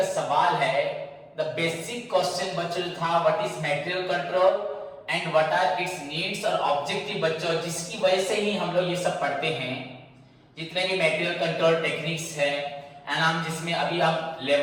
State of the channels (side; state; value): both; identical; correlation 1.00